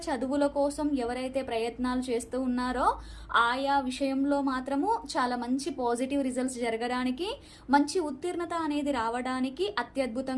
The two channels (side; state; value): both; identical; correlation 1.00